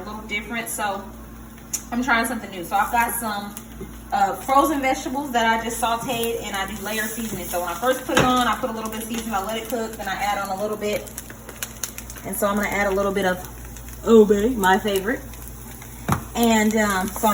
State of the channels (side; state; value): both; identical; correlation 1.00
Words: different, so I'm trying something new. So I've got some frozen vegetables that I just sauteed, and I do layer seasoning. So when I first put it on, I put a little bit of seasoning, I let it cook, then I add on a little bit. And so I'm gonna add a little bit of ube, my favorite. And so